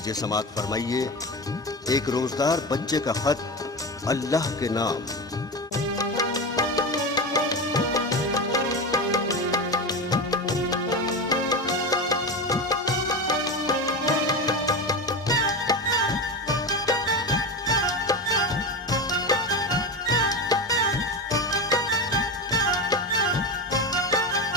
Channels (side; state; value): both; normal; correlation 0.21